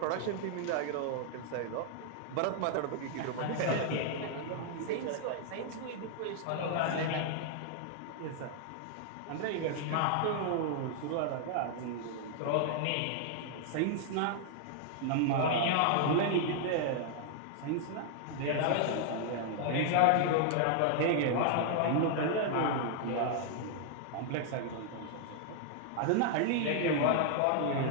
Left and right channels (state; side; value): different; both; correlation 0.00